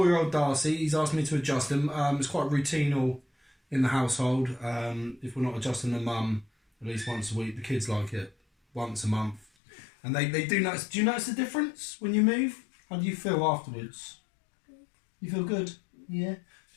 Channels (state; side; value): drops out; right; at 9.5 s